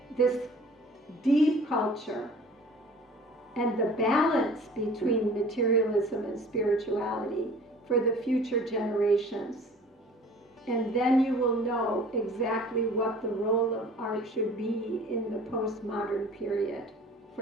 this deep culture and the balance between materialism and spirituality for the future generations. And then you will know exactly what the role of art should be in the postmodern period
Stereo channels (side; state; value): both; normal; correlation 0.47